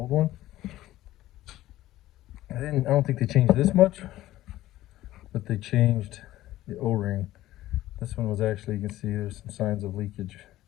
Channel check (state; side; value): quieter; right; 15.2 dB